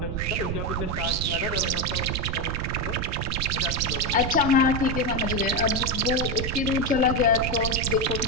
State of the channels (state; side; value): noise; right; rumble, 3 dB below the sound